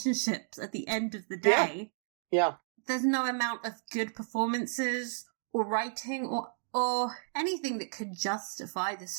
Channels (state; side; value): silent; left; digital silence